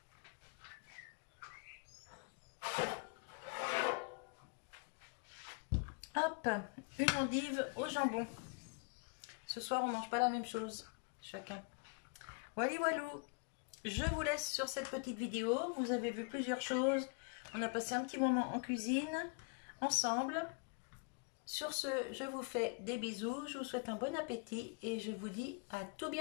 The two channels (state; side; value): quieter; right; 34.2 dB